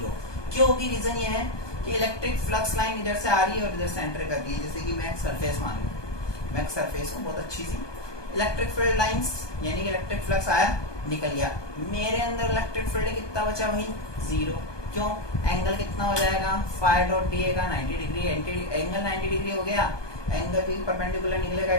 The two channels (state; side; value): late; right; 1.2 ms